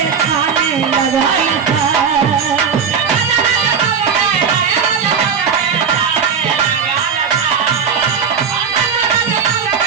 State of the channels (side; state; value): left; quieter; 6.5 dB